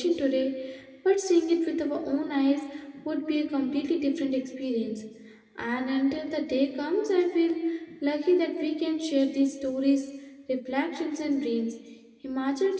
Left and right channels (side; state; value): both; identical; correlation 1.00